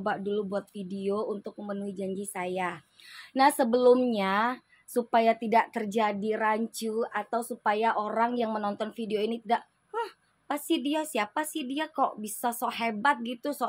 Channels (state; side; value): identical; both; correlation 1.00